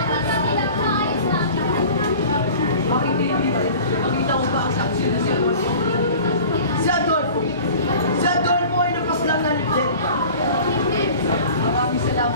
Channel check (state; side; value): inverted; both; correlation -0.42